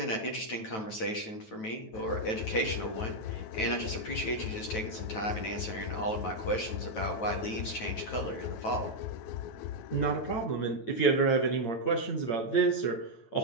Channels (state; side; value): late; right; 9.2 ms